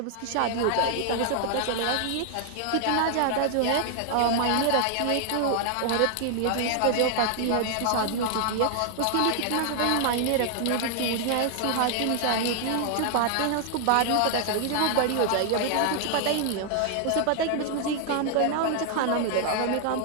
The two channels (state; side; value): different; both; correlation 0.00